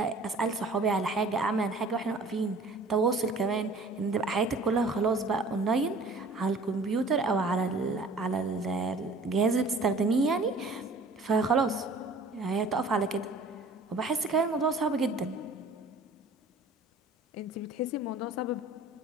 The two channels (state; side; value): quieter; left; 3.1 dB